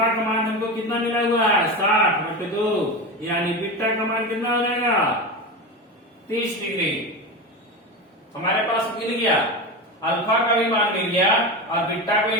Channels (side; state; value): both; normal; correlation 0.22